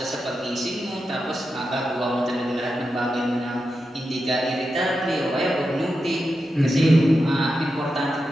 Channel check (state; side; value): normal; both; correlation 0.89